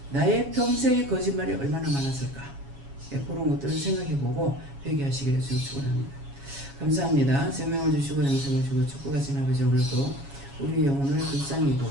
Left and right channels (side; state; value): left; late; 7.3 ms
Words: 나의 평생의 거짓말이 얼마나 많았을까. 예, 그런 것들을 생각해보고 회개하시기를 좀 축원합니다. 감사합니다. 생명을 주시고 영생을 주시고 축복과 지나버지 오늘도 우리 영혼을